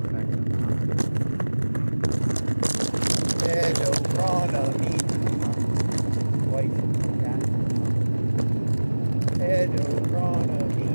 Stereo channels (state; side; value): inverted; both; correlation -1.00